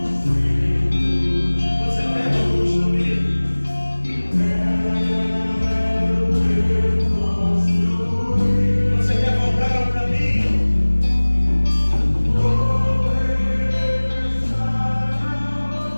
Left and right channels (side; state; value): both; inverted; correlation -1.00